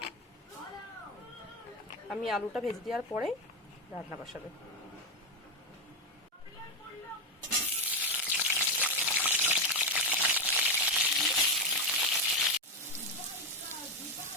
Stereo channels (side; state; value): both; normal; correlation 0.10